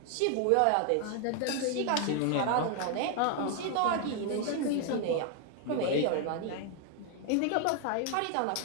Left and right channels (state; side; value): different; both; correlation 0.00